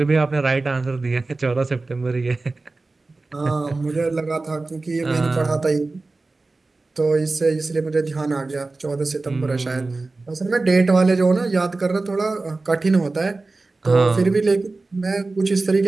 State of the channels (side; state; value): left; quieter; 3.4 dB